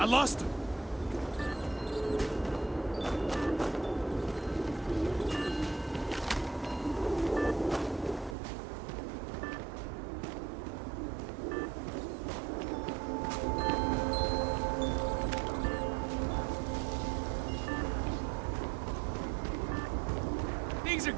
lost him. Things are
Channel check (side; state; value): left; drops out; at 8.3 s